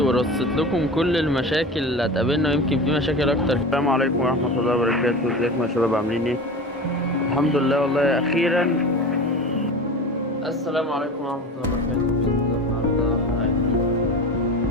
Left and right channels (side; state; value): both; normal; correlation 0.31